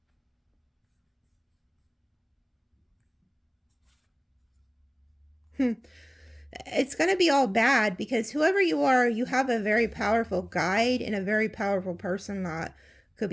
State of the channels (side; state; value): both; identical; correlation 1.00